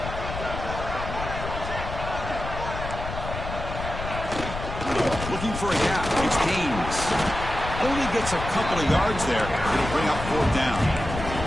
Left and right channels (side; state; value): left; noise; rumble, 7 dB below the sound